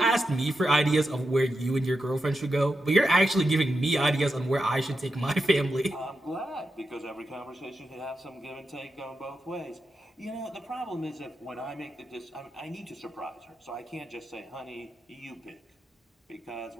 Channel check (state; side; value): normal; both; correlation 0.88